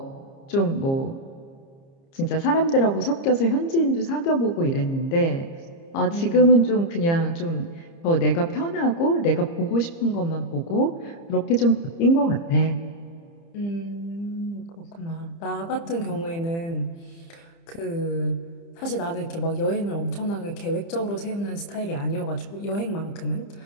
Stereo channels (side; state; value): right; late; 30 ms